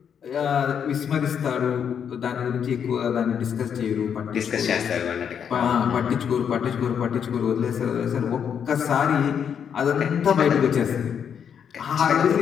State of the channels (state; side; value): quieter; right; 7.8 dB